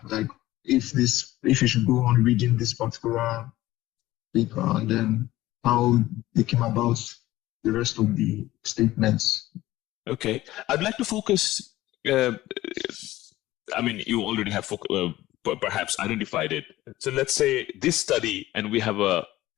like if you should go on reading this particular paper, and then how they came about the rest of the statements. Okay, I'd like to focus. I mean, you already have perhaps identified it. So let's say this study, and we have a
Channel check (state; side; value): quieter; right; 16.3 dB